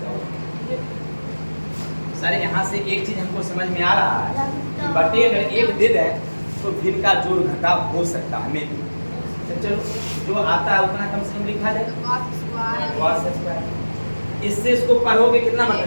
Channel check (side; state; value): both; inverted; correlation -1.00